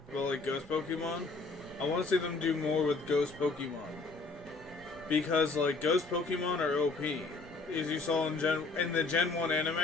but like Ghost Pokemon. I want to see them do more with Ghost Pokemon. Because like Ghost Pokemon are OP. As you saw in the Gen 1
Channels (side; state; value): right; quieter; 3.7 dB